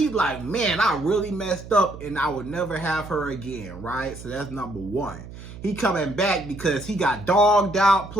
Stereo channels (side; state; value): right; noise; hum, 14 dB below the sound